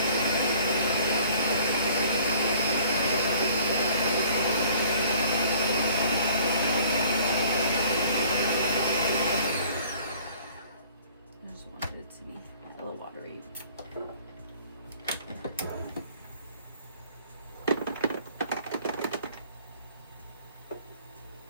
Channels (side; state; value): both; inverted; correlation -0.54